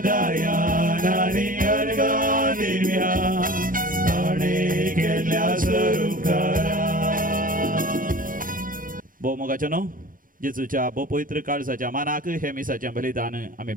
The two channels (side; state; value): left; late; 0.40 ms